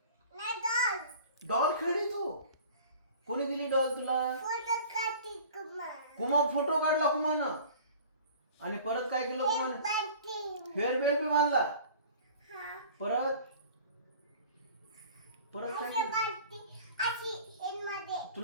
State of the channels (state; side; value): inverted; both; correlation -0.44